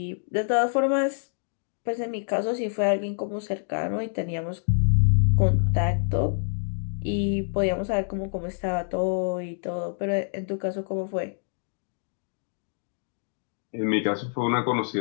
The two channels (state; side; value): silent; right; digital silence